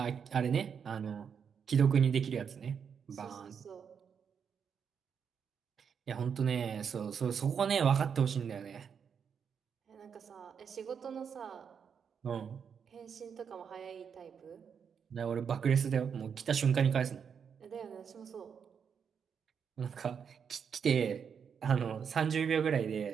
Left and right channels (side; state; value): left; quieter; 7.0 dB